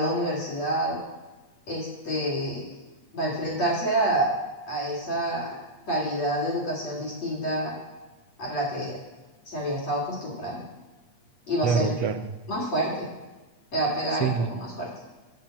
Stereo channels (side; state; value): right; late; 8.4 ms